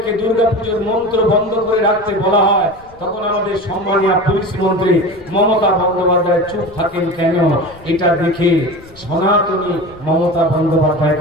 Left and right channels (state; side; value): noise; left; rumble, 24 dB below the sound